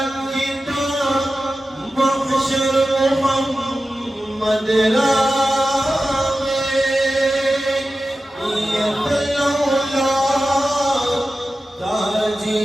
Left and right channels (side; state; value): both; normal; correlation 0.93